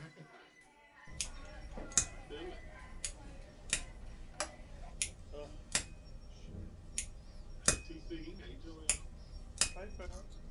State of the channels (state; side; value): identical; both; correlation 1.00